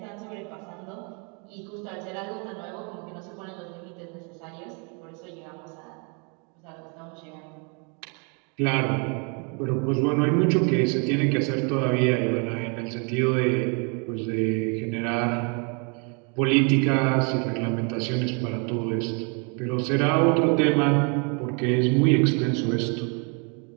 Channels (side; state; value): left; quieter; 35.6 dB